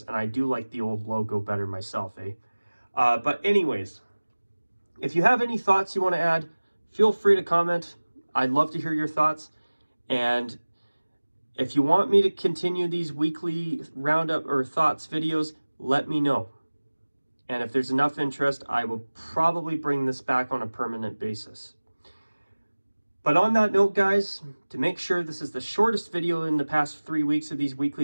and I do like the old logo better myself, eh? But anyways, if you have any thoughts you want to add, feel free to comment. I'd love to hear your thoughts. And if you want me to continue these weekly roundup or thoughts videos, let me know. And if there's enough interest, I will probably bring this back on a permanent basis. But on that note, guys, to make sure this is the shortest video in the past 3 weeks of these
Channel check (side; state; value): both; inverted; correlation -1.00